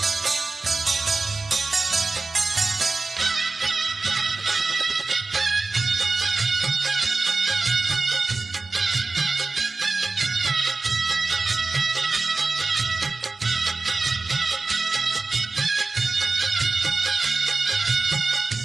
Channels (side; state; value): left; quieter; 3.7 dB